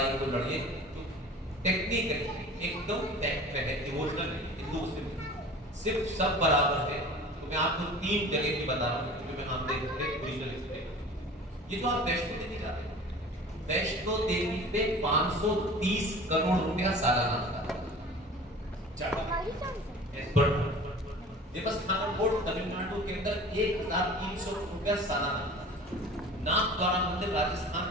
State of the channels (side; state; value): both; normal; correlation 0.41